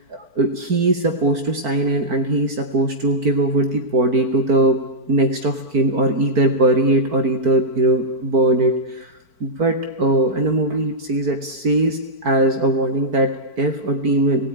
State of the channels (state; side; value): late; left; 4.5 ms